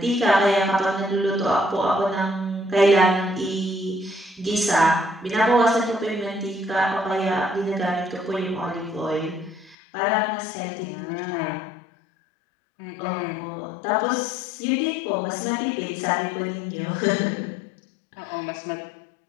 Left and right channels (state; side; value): drops out; right; at 9.8 s